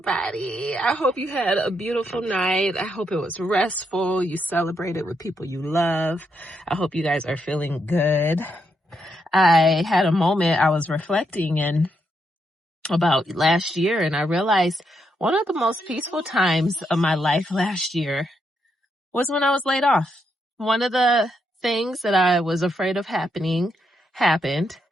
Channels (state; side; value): normal; both; correlation 0.80